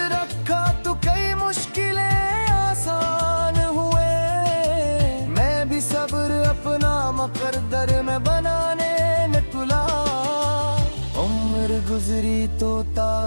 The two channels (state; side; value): inverted; both; correlation -1.00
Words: रखा तो कई मुश्किलें आसान हुए। मैं भी सब्र अपना मुकद्दर में बनाने न कुला। उम्र गुजरी तो